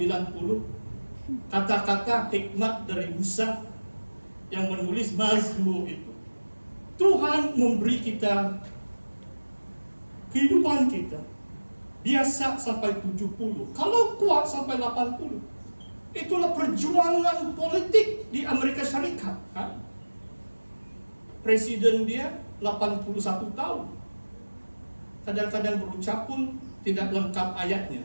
Kata-kata hikmat dari Musa yang menulis Mazmur itu. Tuhan memberi kita kehidupan kita biasa sampai 70. Kalau kuat sampai 80. Itulah perjuangan politik di Amerika Syarikat kan? Presiden dia 81 tahun. Kadang-kadang berucap pun tidak lengkap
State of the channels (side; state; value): both; inverted; correlation -1.00